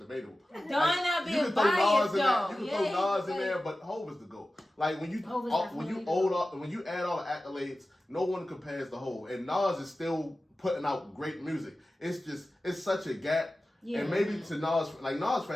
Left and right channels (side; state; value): both; normal; correlation 0.95